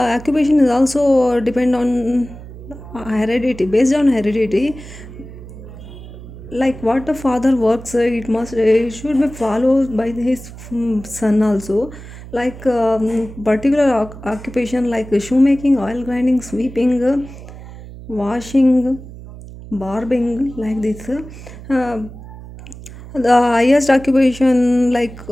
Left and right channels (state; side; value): noise; right; hum, 15 dB below the sound